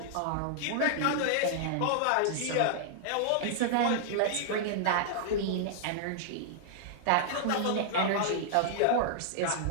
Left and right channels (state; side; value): different; both; correlation -0.01